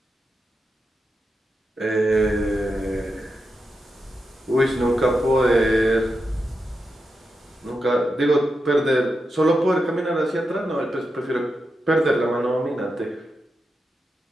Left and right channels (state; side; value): normal; both; correlation 0.87